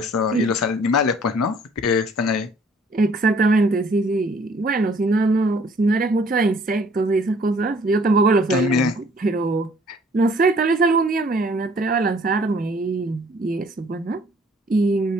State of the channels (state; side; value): normal; both; correlation 0.58